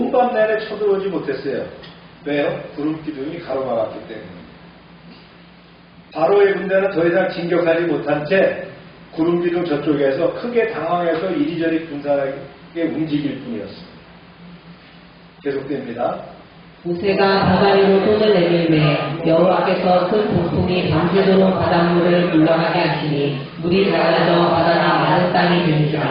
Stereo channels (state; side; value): identical; both; correlation 1.00